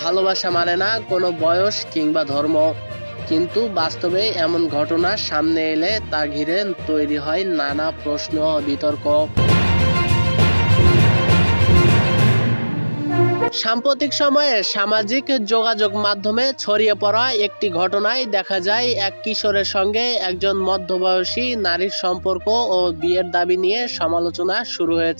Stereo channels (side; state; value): both; inverted; correlation -1.00